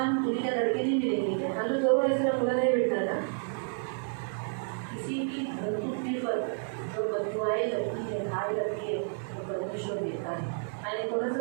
दुनिया लड़के नहीं मिलेंगे क्या? आणि तो जवळ असेल मुलं नाही भेटणार का? किसी की धर्तुक्ति पर जो बदुआएं लगती है, घाय लगती है, वो परमेश्वर देता है. आणि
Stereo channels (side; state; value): left; silent; 58 dB below the other